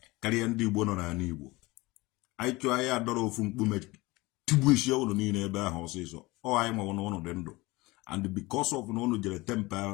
Karịa ndị Igbo nọ n'ala Igbo. Anyị chọọ anyị adọrọ ofu mkpume tigbu isi ọnụ niile ebe ahụ ọsịsọ. Ọ anyị nwewo n'ụnụ dị ndụ. And because of na ụnụ jere tempa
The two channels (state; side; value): quieter; right; 21.8 dB